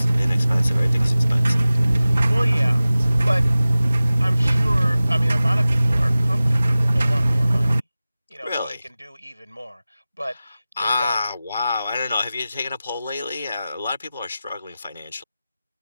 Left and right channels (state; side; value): inverted; both; correlation -0.97